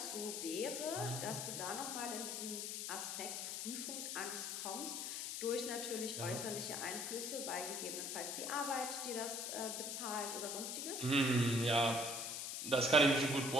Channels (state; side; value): noise; left; hiss, 3 dB below the sound